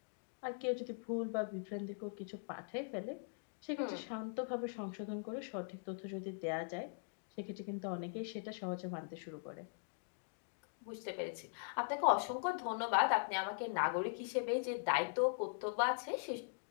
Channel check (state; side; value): silent; right; digital silence